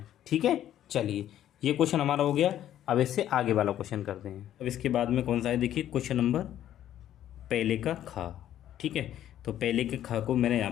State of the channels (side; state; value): right; quieter; 11.6 dB